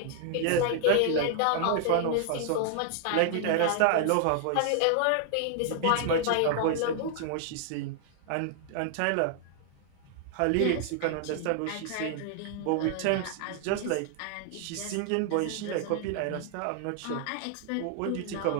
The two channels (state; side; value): different; both; correlation -0.01